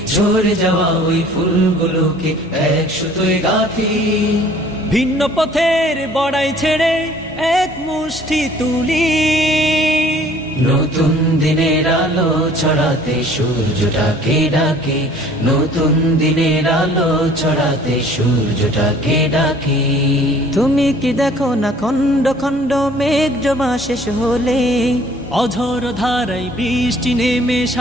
ঝরে যাওয়া ওই ফুলগুলোকে এক সুতোয় গাঁথি। ভিন্ন পথের বড়াই ছেড়ে এক মুষ্টি তুলি, নতুন দিনের আলো ছড়াতে সূর্যটাকে ডাকি, নতুন দিনের আলো ছড়াতে সূর্যটাকে ডাকি। তুমি কি দেখো না খণ্ড খণ্ড মেঘ জমা শেষ হলে, অঝোর ধারায় বৃষ্টি নেমে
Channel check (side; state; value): both; normal; correlation 0.54